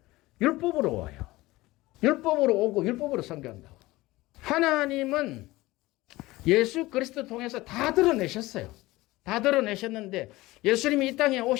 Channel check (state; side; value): quieter; right; 19.2 dB